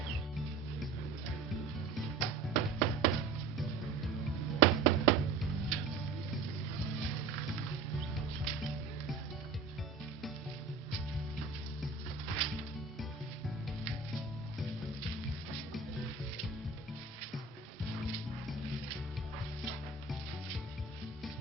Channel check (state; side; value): quieter; left; 4.5 dB